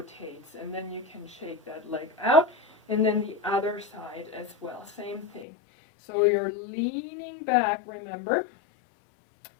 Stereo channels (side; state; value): right; drops out; at 5.5 s